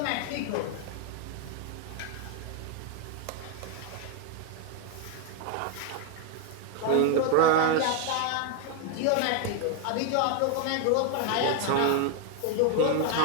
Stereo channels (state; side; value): different; both; correlation 0.00